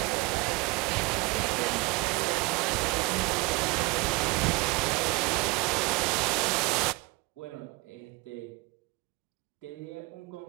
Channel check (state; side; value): quieter; left; 25.0 dB